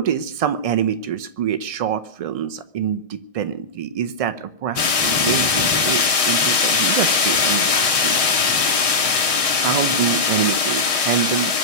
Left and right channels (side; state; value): left; late; 1.6 ms